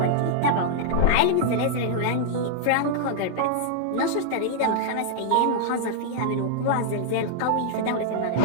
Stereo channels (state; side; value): different; both; correlation -0.01